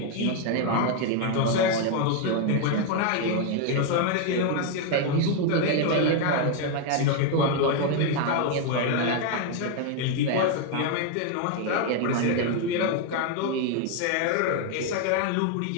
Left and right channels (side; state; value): both; different; correlation 0.01